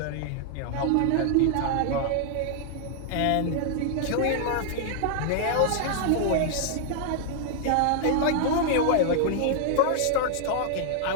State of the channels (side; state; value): both; different; correlation 0.00